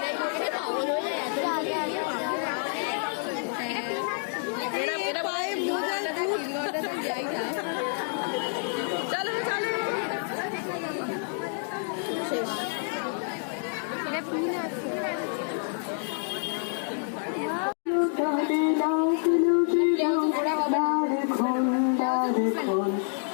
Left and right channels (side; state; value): right; silent; 58 dB below the other